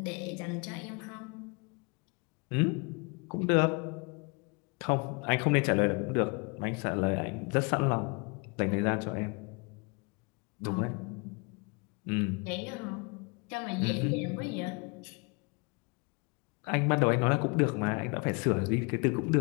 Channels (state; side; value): quieter; right; 31.6 dB